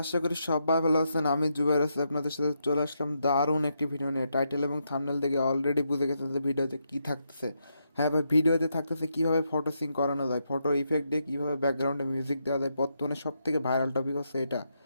আশা করি সবাই ভালো আছেন। আমি জুবাইর আছি, আপনাদের সাথে চলে আসলাম দারুণ একটি ভিডিও নিয়ে। টাইটেল এবং থাম্বনেল দেখে অলরেডি বুঝে গেছেন যে ভিডিওতে কী থাকতেছে। হ্যাঁ ভাই, ভিডিওতে থাকতেছে কীভাবে ফটো সিং করানো যায়, ফটো ইফেক্ট দিয়ে কীভাবে ব্যাকগ্রাউন্ডে মিউজিক দেওয়া যায়। বর্তমানে সব থেকে ভাইরাল টপিক হচ্ছে এটা,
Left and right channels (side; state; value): both; inverted; correlation -0.81